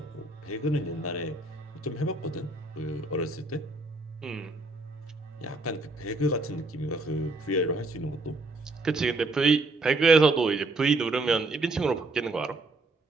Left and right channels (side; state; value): left; quieter; 3.1 dB